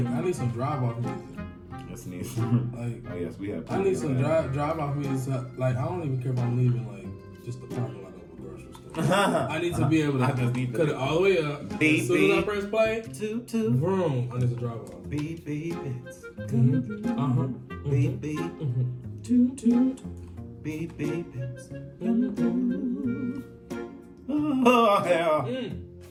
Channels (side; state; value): both; identical; correlation 1.00